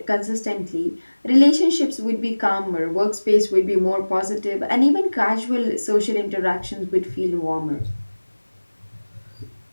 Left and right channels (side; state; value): both; inverted; correlation -1.00